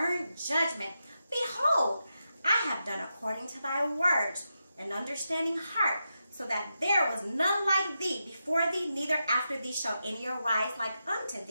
judgment. Behold, I have done according to thy words, an understanding heart, so that there was none like thee before thee, neither after thee shall any arise like unto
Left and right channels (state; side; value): inverted; both; correlation -0.87